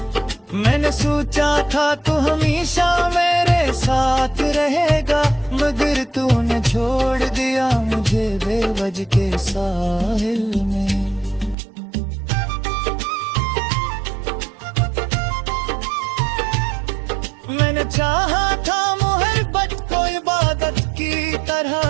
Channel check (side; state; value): left; drops out; at 11.6 s